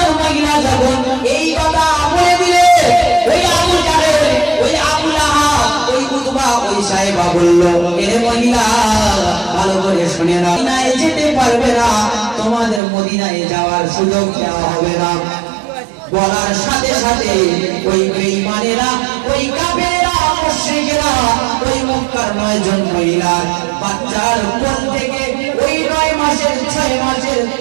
মহিলা যখন এই কথা বলে দিলে, ওই আবু জাহেল, ওই আবু লাহাব, ওই উতবা, ওই সাইবা বলল, এ মহিলা ভালো করে শুনে নাও, মদিনায় যেতে পারবে না, তোমাদের মদিনায় যাওয়ার সুযোগ দেওয়া হবে না। বলার সাথে সাথে ওই বেঈমানেরা, ওই কাফেররা, মুশরিকরা ওই মক্কার 9 জন মহিলা বাচ্চার কোল থেকে ওই 9 মাসের 6 মাসের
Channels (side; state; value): left; drops out; at 12.8 s